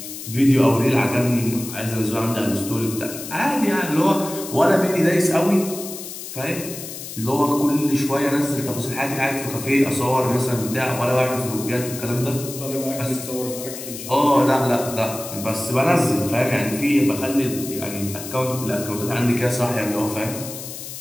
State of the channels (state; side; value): noise; left; hiss, 10 dB below the sound